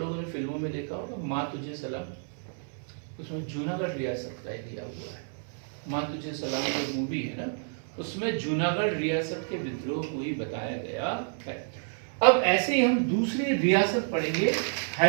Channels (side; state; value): left; silent; digital silence